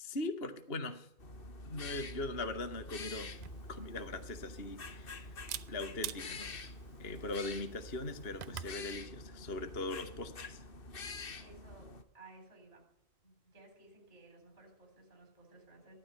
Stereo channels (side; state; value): right; late; 2.0 ms